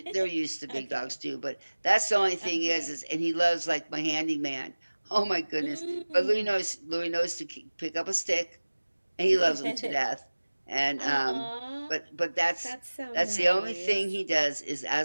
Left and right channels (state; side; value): inverted; both; correlation -1.00